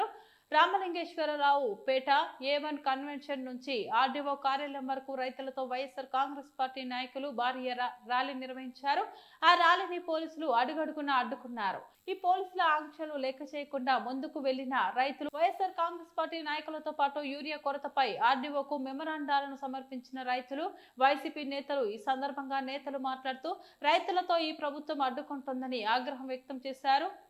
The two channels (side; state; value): both; identical; correlation 1.00